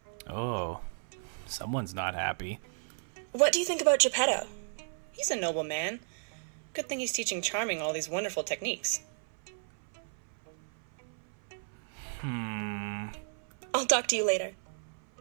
Oh, someone's not happy. What do you think about Geppetto? He's a noble man. Good thing he's teaching Charming all these wonderful techniques. I'll talk to you later.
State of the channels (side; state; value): left; silent; 55 dB below the other